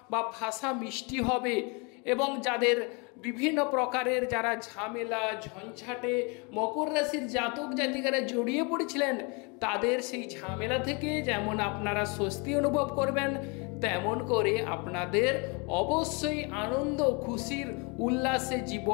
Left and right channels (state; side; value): quieter; right; 31.6 dB